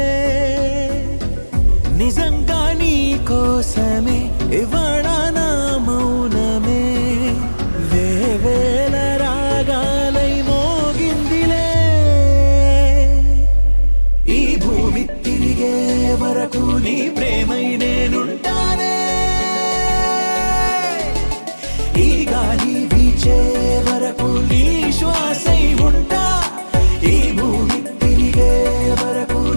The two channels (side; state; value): both; inverted; correlation -1.00